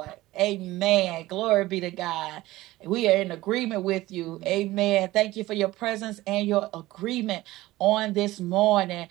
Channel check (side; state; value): left; quieter; 17.7 dB